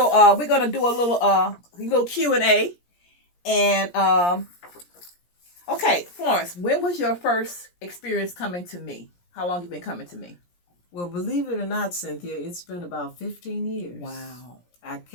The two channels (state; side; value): late; right; 17 ms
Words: we're going to do a little Q&A. And okay, Florence, when was your first experience coming to me? How long you been coming to me? Well, believe it or not, Cynthia, it's been about 15 years. Wow. I